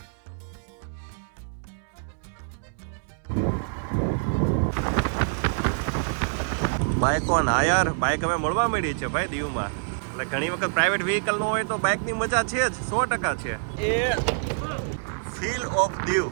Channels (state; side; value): silent; left; 61 dB below the other